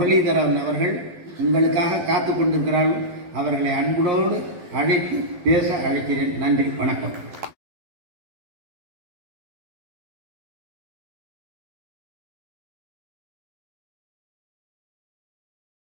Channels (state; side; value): late; left; 12 ms